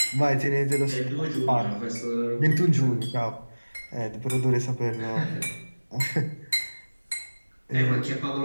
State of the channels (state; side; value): inverted; both; correlation -1.00